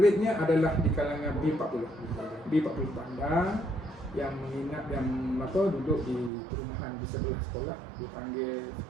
adalah di kalangan B40 bandar yang menginap yang duduk di perumahan di sebelah sekolah, dipanggil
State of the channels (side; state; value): left; drops out; at 6.3 s